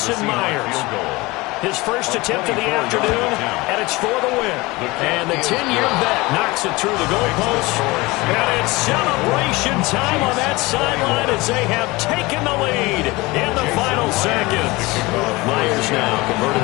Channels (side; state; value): right; quieter; 22.3 dB